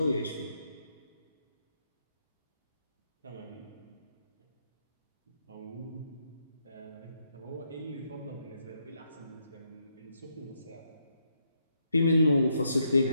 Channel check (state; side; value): inverted; both; correlation -0.78